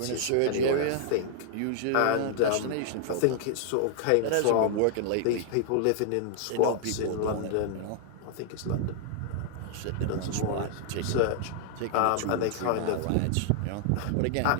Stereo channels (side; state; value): both; different; correlation 0.00